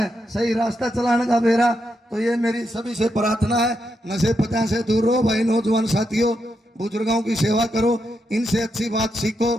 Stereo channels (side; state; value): both; normal; correlation 0.83